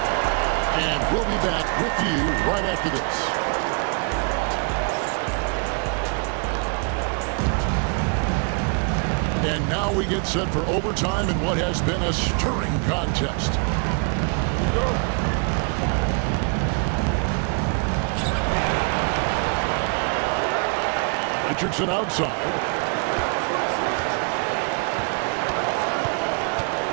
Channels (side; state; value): left; quieter; 37.2 dB